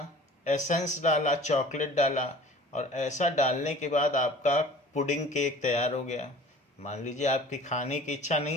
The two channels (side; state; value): both; normal; correlation 0.46